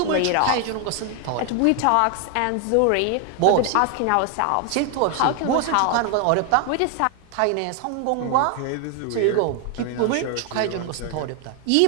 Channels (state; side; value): different; both; correlation 0.00